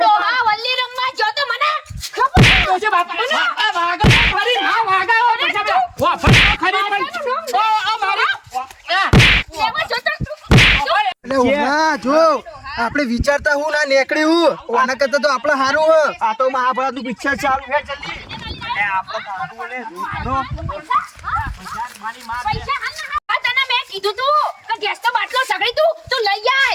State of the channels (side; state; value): both; identical; correlation 1.00